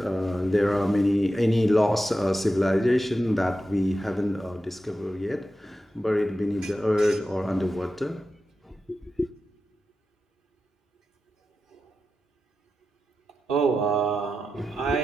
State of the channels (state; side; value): normal; both; correlation 0.91